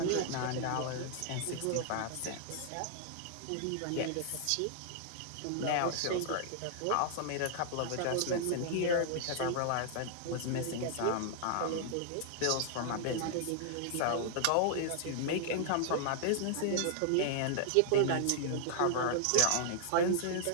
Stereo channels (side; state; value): both; different; correlation -0.01